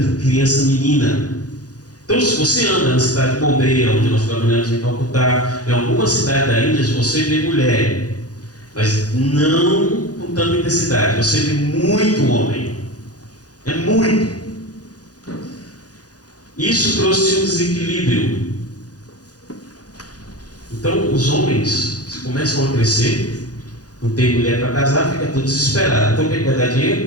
criança menina. Então, se você anda na cidade de Bombay, onde nós trabalhamos em Calcutá, em alguma cidade da Índia, você vê mulher, mas não com tanta intensidade. Você vê muito homem. É muito. Isso trouxe um desequilíbrio. Então, os homens começam a crescer, não tem mulher para casar, fica tudo desesperado. Então, o que vai dar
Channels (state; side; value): late; right; 0.68 ms